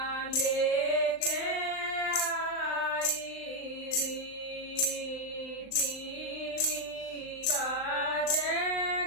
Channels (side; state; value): right; late; 39 ms